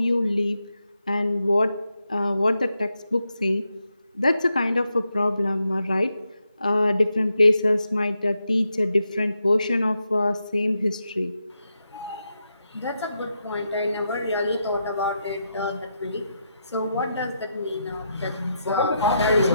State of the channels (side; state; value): both; inverted; correlation -0.84